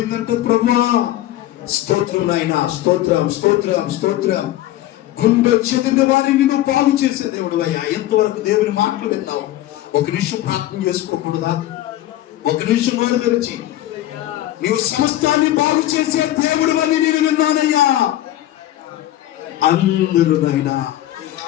ప్రభువా స్తోత్రం నాయన. స్తోత్రం స్తోత్రం స్తోత్రం. గుండె చెదిరిన వారిని నువ్వు బాగు చేసే దేవుడు అయ్యా. ఎంతవరకు దేవుని మాటలు విన్నావు? ఒక నిమిషం ప్రార్థన చేసుకోకూడదా? ఒక నిమిషం నోరు తెరిచి, నీవు సమస్తాన్ని బాగు చేసే దేవుడు అని నేను విన్నానయ్యా. అందరూ నాయనా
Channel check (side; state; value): right; quieter; 14.4 dB